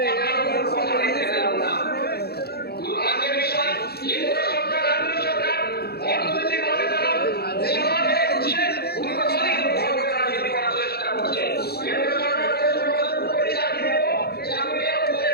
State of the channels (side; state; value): right; late; 0.46 ms